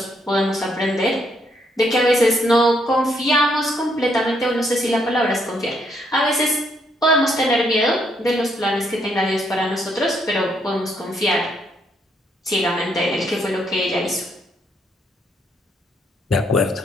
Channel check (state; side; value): normal; both; correlation 0.73